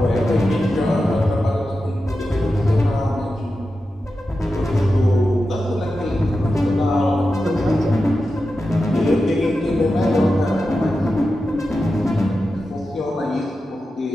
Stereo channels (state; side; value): normal; both; correlation 0.91